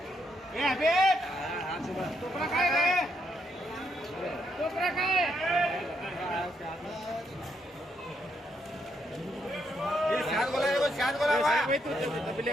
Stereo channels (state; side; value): normal; both; correlation 0.77